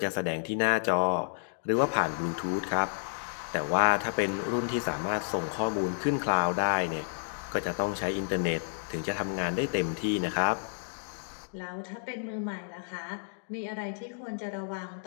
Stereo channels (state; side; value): silent; right; digital silence